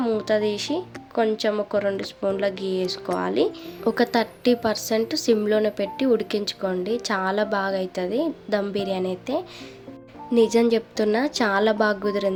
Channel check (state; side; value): identical; both; correlation 1.00